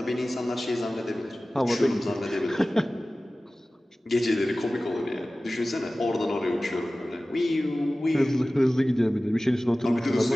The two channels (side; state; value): both; normal; correlation 0.97